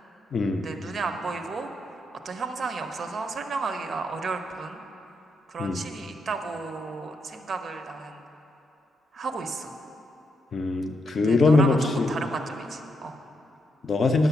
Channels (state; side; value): normal; both; correlation 0.80